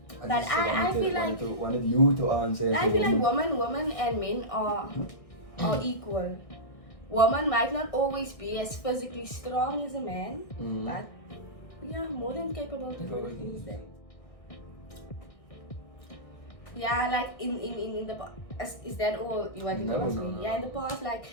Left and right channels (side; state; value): right; late; 1.6 ms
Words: But just I feel like wanted you to answer. I feel like women and men are equal. Woman might not always be as physically strong as a man, but we are more than capable to do things that. Yeah, like in the past, is that all you wanted to ask me? No. Yeah, in the past, like